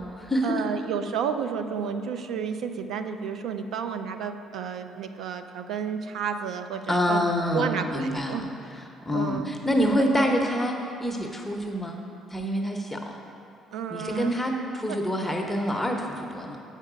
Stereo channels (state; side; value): normal; both; correlation 0.68